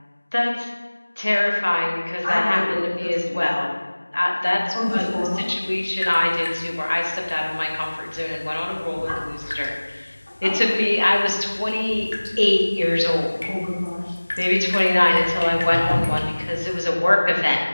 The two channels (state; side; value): inverted; both; correlation -1.00